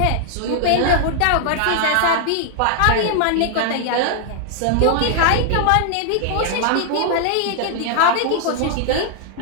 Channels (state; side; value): different; both; correlation -0.01